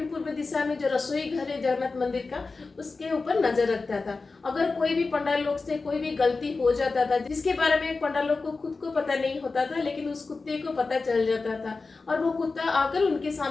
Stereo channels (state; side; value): quieter; right; 4.0 dB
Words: पूर्व दिशा में जो रसोई घर है जगन्नाथ मंदिर का उसके ऊपर नजर रखता था। अगर कोई भी पंडाल लोग से कोई भी गलती हो जाता था जिसके बारे में पंडाल लोग को खुद को पता नहीं होता था, लेकिन उस कुत्ते को पता चल जाता था और वो कुत्ता आकर उनके